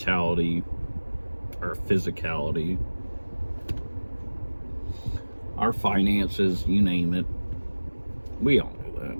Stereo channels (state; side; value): inverted; both; correlation -1.00